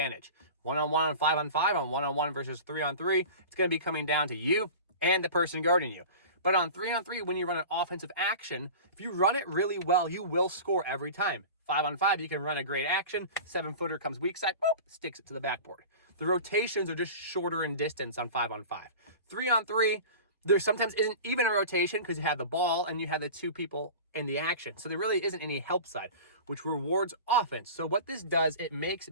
One-on-one on 5-on-5, on one-on-one versus 3-on-3, it's going to be coming down to you and the person guarding you. But on 3-on-3, when you run an offensive action, if you run it really well, you will score every time. 5-on-5, you can run a great action. 7-footer comes weak side, boop, sticks it to the backboard. The rotations are just shorter in distance on 5-on-5. 3-on-3, there sometimes isn't even a rotation because you have the ball and you have the two people in the action. So there really isn't any help side, which rewards offense. So what this does, it makes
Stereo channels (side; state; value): both; inverted; correlation -0.36